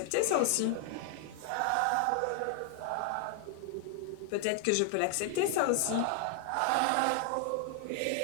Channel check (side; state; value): both; different; correlation 0.00